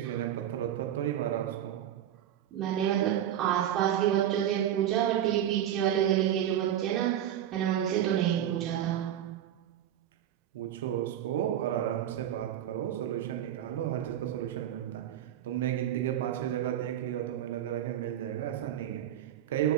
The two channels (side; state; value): left; quieter; 11.0 dB